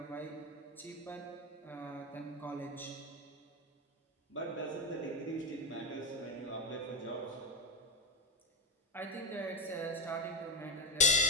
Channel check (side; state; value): both; normal; correlation 0.11